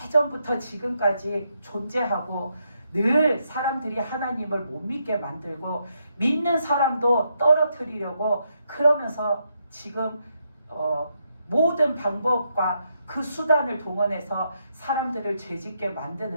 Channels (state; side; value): inverted; both; correlation -0.79